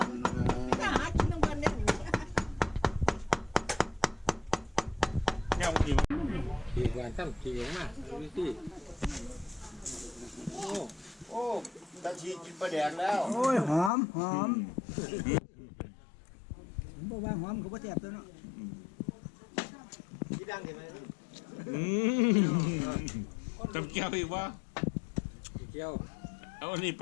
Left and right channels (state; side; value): drops out; right; at 13.9 s